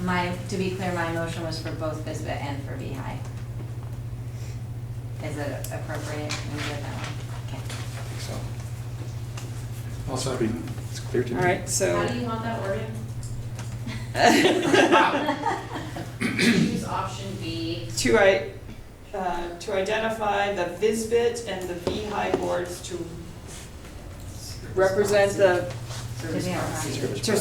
to be clear, my motion was for both VISBIT and for VHI. Is it appropriate? Can we get that one? Okay. I think so. Also, It's clear to me. All right, so. How do you want that worded? choose option B. To identify the VISBIT and the VHI boards to represent the, Service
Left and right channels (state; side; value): identical; both; correlation 1.00